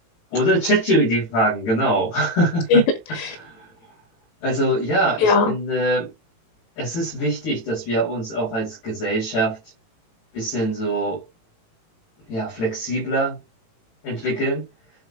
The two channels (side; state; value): right; late; 18 ms